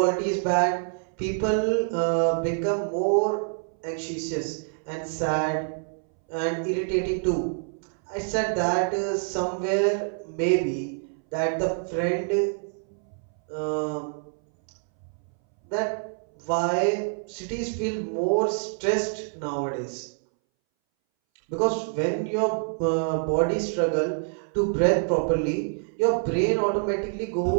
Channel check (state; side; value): silent; left; 61 dB below the other